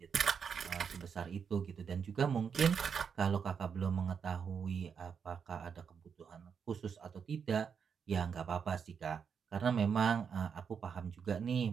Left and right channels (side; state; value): left; quieter; 6.7 dB